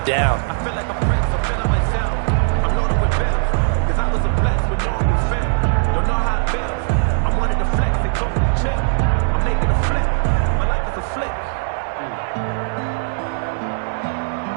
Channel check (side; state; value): left; silent; digital silence